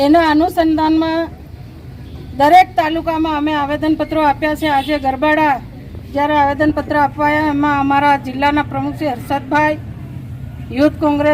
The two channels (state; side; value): identical; both; correlation 1.00